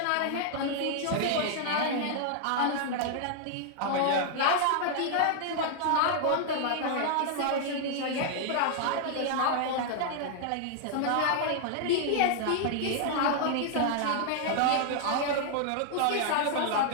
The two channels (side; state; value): both; different; correlation 0.00